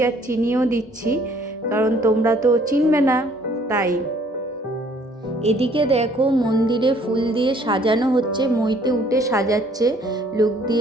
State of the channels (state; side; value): normal; both; correlation 0.60